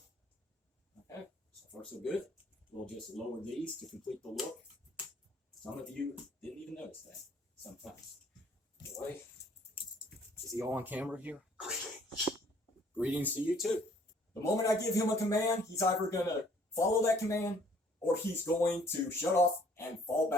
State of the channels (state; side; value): normal; both; correlation 0.60